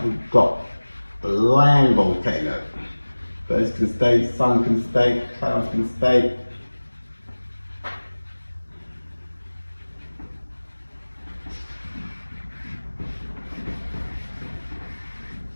we've got a land volcano. Birds can stay, sun can stay, clouds can stay.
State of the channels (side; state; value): both; inverted; correlation -1.00